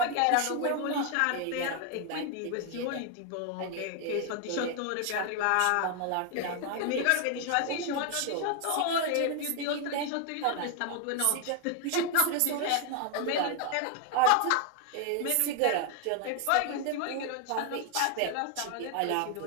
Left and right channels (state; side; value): different; both; correlation 0.00